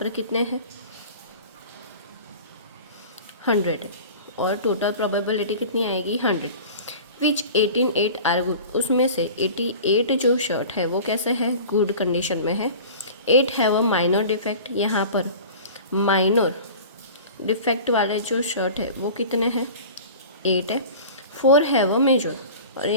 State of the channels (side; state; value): both; inverted; correlation -0.39